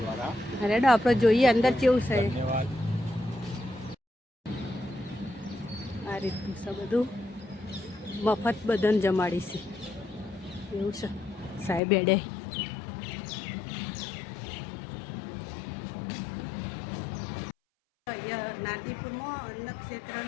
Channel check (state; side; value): drops out; right; at 11.8 s